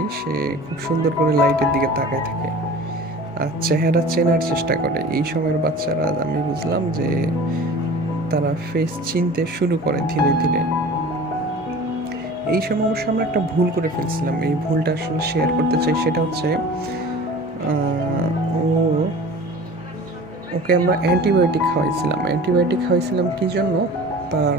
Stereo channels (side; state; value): both; normal; correlation 0.41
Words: সে খুব সুন্দর করে লাইটের দিকে তাকায় থাকে আর চেহারা চেনার চেষ্টা করে। এই সময়ের বাচ্চারা আমি বুঝলাম যে তারা ফেস চিনতে শুরু করে ধীরে ধীরে। এই সময় অবশ্য আমরা একটা ভুল করে ফেলছিলাম, এই ভুলটা আসলে শেয়ার করতে চাই। সেটা হচ্ছে ওকে আমরা অ্যান্টিবায়োটিক খাওয়াইছিলাম কি জন্য? তার